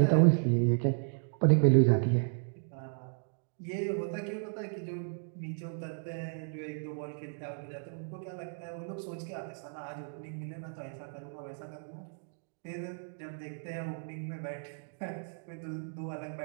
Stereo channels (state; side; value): silent; left; digital silence